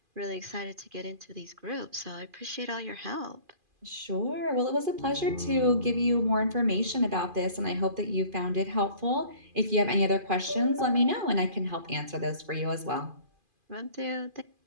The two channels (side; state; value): left; late; 2.5 ms